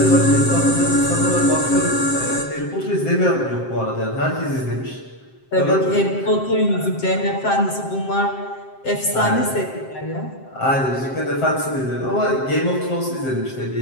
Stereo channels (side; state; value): right; late; 7.6 ms